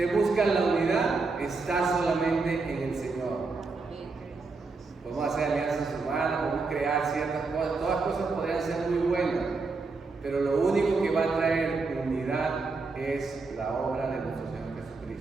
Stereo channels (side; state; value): left; quieter; 4.0 dB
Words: busca la unidad, está solamente en el Señor. Podemos hacer alianzas humanas, podemos crear ciertas cosas, todas cosas podrían ser muy buenas, pero lo único que va a traer unidad es la obra de nuestro Señor